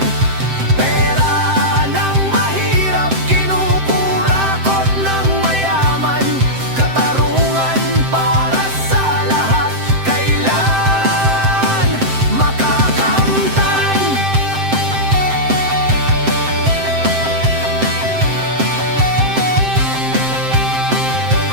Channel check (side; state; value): left; late; 7.7 ms